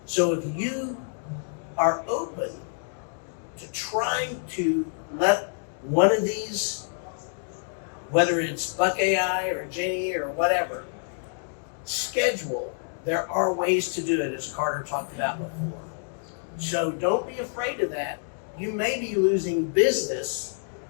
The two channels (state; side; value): silent; right; digital silence